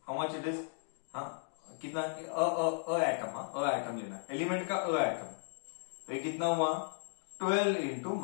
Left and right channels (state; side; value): silent; right; digital silence